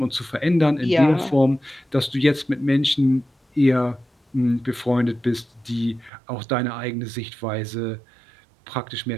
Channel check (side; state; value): left; drops out; at 6.1 s